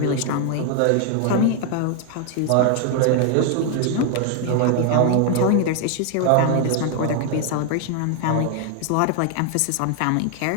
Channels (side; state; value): both; different; correlation 0.00